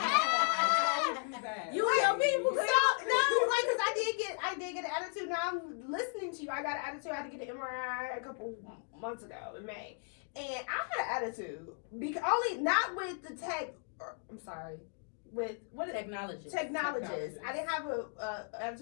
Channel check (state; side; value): silent; right; 54 dB below the other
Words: You and your people. So no, like, cause I did get an attitude. Now I'm listening to you. I got an attitude. I had to get an MRI a couple months ago in May, and I had an attitude because only not with the tech. I'm sorry. With what technologist. I didn't have a